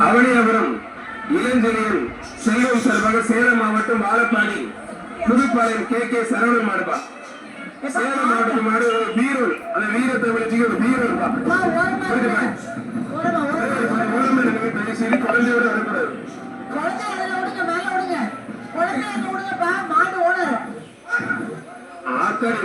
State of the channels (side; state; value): both; identical; correlation 1.00